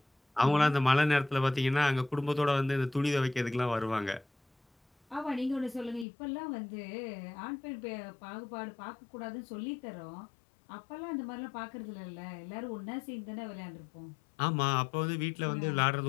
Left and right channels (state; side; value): drops out; right; at 6.1 s